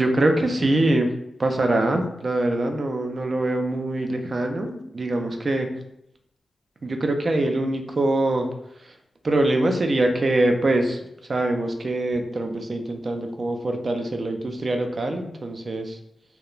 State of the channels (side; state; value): both; normal; correlation 0.91